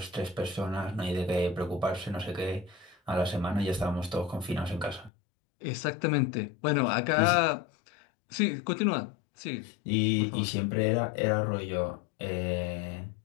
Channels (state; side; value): drops out; right; at 5.1 s